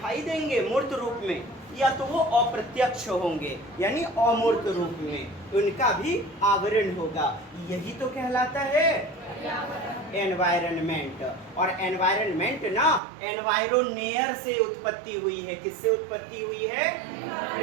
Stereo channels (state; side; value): drops out; left; at 13.0 s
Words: देंगे मूर्त रूप में, या तो वो अप्रत्यक्ष होंगे यानी अमूर्त रूप में, उनका भी आवरण होगा। यही तो कहलाता है एनवायरनमेंट। और एनवायरनमेंट ना एनवायरोनेयर से उत्पत्ति हुई है। किससे उत्पत्ति हुई है?